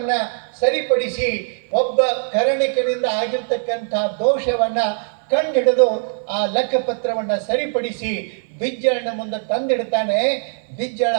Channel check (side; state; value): left; silent; 58 dB below the other